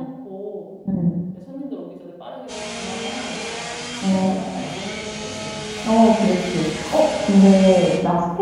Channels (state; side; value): identical; both; correlation 1.00